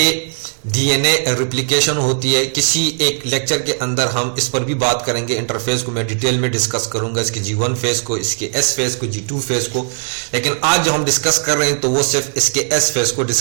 डीएनए रिप्लिकेशन होती है। किसी एक लेक्चर के अंदर हम इस पर भी बात करेंगे, इंटरफेस को मैं डिटेल में डिस्कस करूंगा, इसके G1 फेस को, इसके S फेस को, G2 फेस को। लेकिन आज जो हम डिस्कस कर रहे हैं तो वो सिर्फ इसके S फेस को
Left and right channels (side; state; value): left; silent; 68 dB below the other